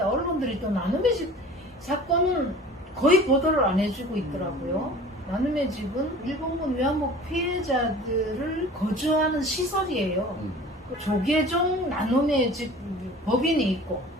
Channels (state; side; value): normal; both; correlation 0.43